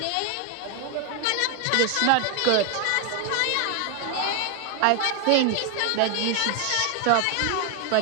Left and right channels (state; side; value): different; both; correlation 0.01